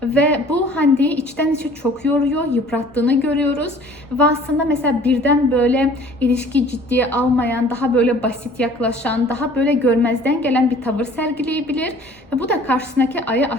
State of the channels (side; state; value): both; normal; correlation 0.50